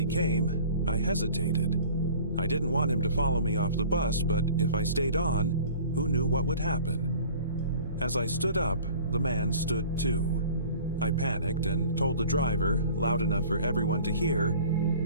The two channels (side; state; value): both; inverted; correlation -0.46